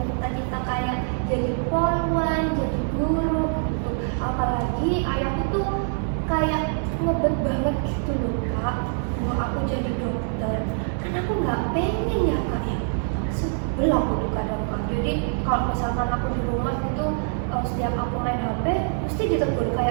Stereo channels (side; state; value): left; silent; 62 dB below the other